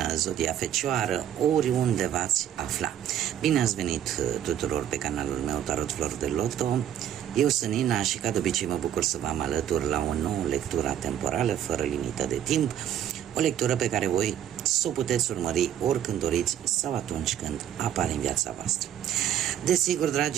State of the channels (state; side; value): quieter; left; 10.4 dB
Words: Zodia Fecioară, oriunde v-ați afla. Bine ați venit tuturor pe canalul meu Tarot Flori de Loto. Eu sunt Nina și ca de obicei mă bucur să vă am alături la o nouă lectură temporală fără limită de timp. O lectură pe care voi să o puteți urmări oricând doriți sau atunci când apare în viața voastră. Desigur,